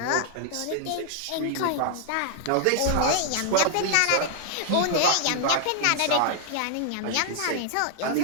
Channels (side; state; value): both; different; correlation 0.00